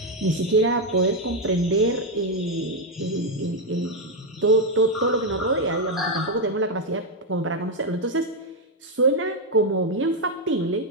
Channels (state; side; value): normal; both; correlation 0.03